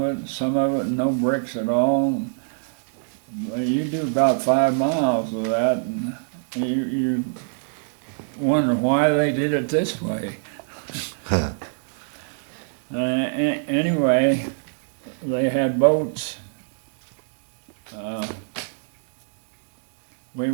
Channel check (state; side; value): silent; left; digital silence